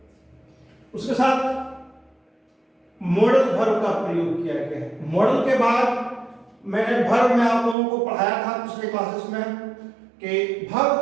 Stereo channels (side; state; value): left; drops out; at 7.8 s